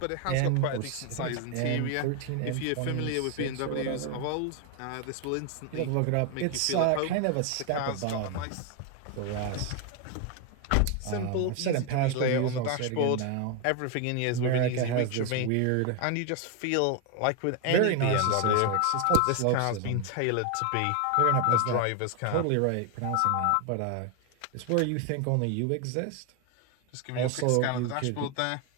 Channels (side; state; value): both; different; correlation 0.01